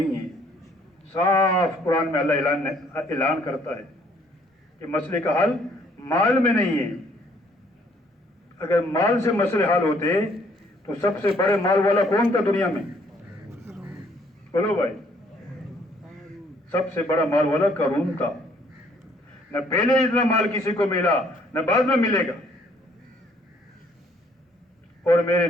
ہے۔ صاف قرآن میں اللہ اعلان کرتا ہے کہ مسئلے کا حل مال میں نہیں ہے۔ اگر مال سے مسئلے حل ہوتے تو سب سے بڑے مال والا کون تھا دنیا میں؟ بولو بھائی، سب سے بڑا مال والا قارون تھا۔ نہ پہلے اتنا مال کسی کو ملا، نہ بعد میں ملے گا۔ اور میرے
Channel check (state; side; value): normal; both; correlation 0.64